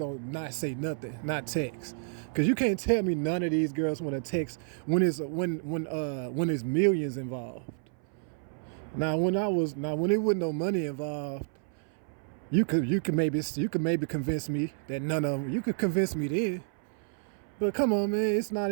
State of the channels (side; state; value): left; silent; 58 dB below the other